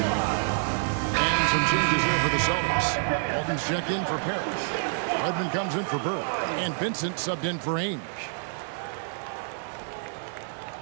And some changes here for the Celtics. Walton's checked in for Parrish. Redmond comes in for Bird. And Vincent subbed in for Ainge.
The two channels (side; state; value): left; silent; 59 dB below the other